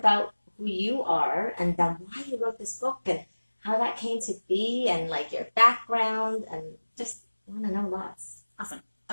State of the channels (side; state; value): both; inverted; correlation -1.00